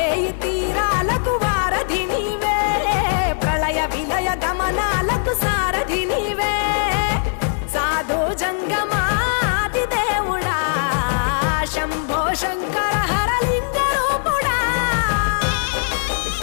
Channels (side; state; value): right; silent; digital silence